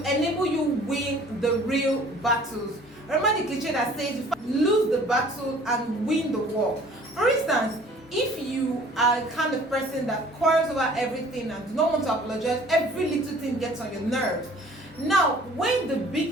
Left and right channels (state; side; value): normal; both; correlation 0.52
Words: enable you win the real battles. Remember the cliche that says you lose the battle and win the war. For instance, if you are the kind of person that quarrels over everything and do not want to apologize, every little thing gets on your nerves. Now, when the